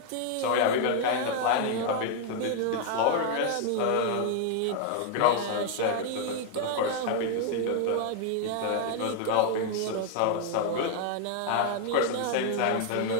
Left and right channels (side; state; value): both; different; correlation 0.00